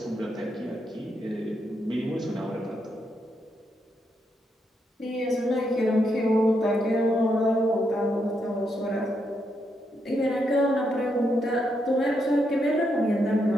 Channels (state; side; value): normal; both; correlation 0.80